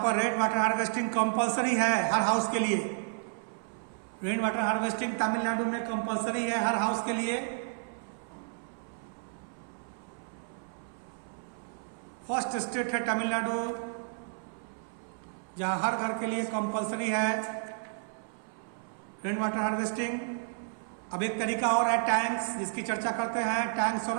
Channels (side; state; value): left; silent; 57 dB below the other